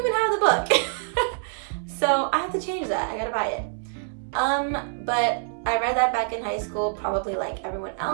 have the book. So I have to change that. I gotta buy it. But I read that back in high school, probably like everyone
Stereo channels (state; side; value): silent; left; digital silence